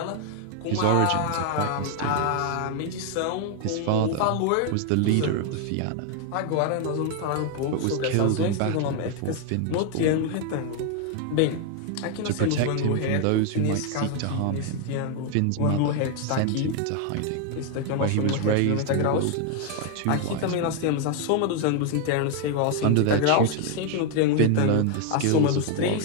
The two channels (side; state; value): both; different; correlation 0.00